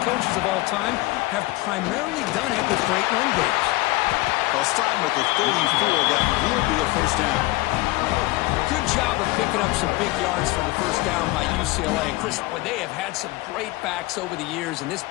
coaches of all time have primarily done it with great run games. They'll stop with the 34. That will be a first down. Good job of picking up some big yards for the first down by UCLA. And Chris, they have had some great backs over the years, and this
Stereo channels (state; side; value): quieter; right; 20.3 dB